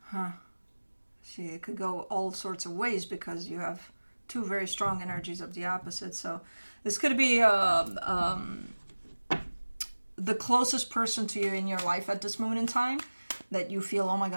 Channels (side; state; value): both; inverted; correlation -1.00